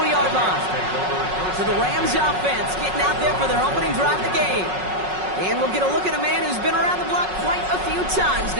line. So the Rams offense getting out there for their opening drive of the game. And we'll get a look at a man who's been around the block quite a few times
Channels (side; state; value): left; late; 5.4 ms